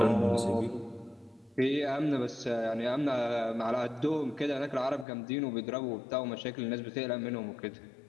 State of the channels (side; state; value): right; drops out; at 5.1 s